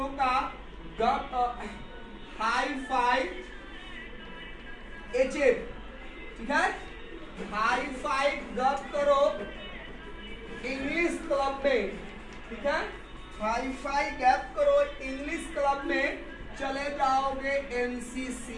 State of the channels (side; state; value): both; identical; correlation 1.00